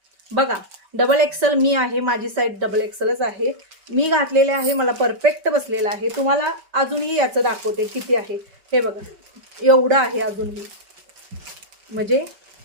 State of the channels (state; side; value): late; left; 5.2 ms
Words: बघा डबल एक्सेल मी आहे, माझी साईज डबल एक्सेलच आहे. मी घातलेले आहे, मला परफेक्ट बसलेला आहे. तुम्हाला अजूनही याचं दाखवते किती आहे. हे बघा एवढं आहे अजूनही, म्हणजे